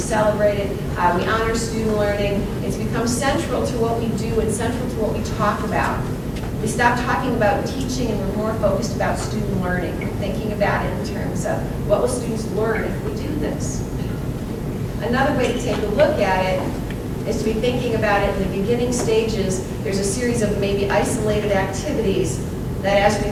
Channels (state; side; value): identical; both; correlation 1.00